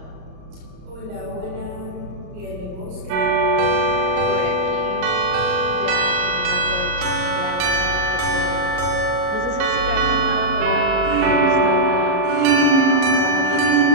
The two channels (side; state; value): left; late; 33 ms